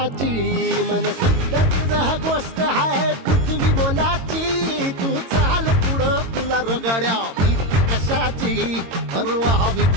मन शुद्ध तुझं गोष्ट हाय पृथ्वी मोलाची, तू चाल पुढं तुला रगड्या भीती कशाची, परवा बी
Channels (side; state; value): left; late; 22 ms